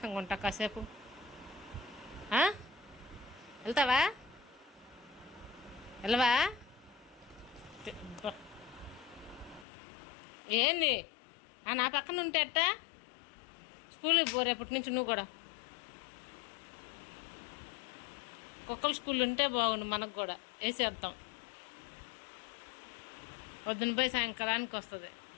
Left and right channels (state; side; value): drops out; right; at 9.7 s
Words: ఉంటా కాసేపు. వెళ్తావా? వెళ్ళవా? ఏంది నా పక్కన ఉంటే అట్టా? స్కూల్కి పో రేపటి నుంచి నువ్వు కూడా. కుక్కల స్కూల్ ఉంటే బాగుండు మనకు కూడా, వేసేద్దాం. పొద్దున పోయి సాయంకాలానికి వస్తుంది.